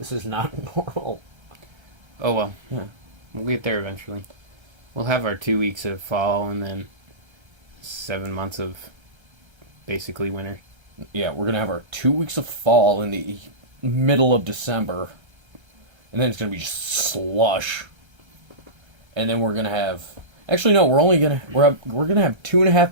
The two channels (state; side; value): late; left; 1.3 ms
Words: is not normal. Oh well. Yeah. We'll get there eventually. We'll have our 2 weeks of fall and then 7 months of basically winter. Yeah, we're going to have our 2 weeks of fall in the middle of December. And then it's going to be just slush. And then we're going to have... Actually, no, we're going to have